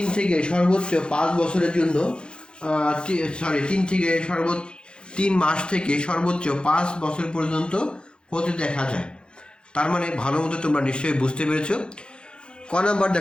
থেকে সর্বোচ্চ 5 বছরের জন্য 3 মাস থেকে সর্বোচ্চ 5 বছর পর্যন্ত হতে দেখা যায়। তার মানে ভালো মতো তোমরা নিশ্চয়ই বুঝতে পেরেছ। ক নাম্বার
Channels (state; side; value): late; right; 0.052 ms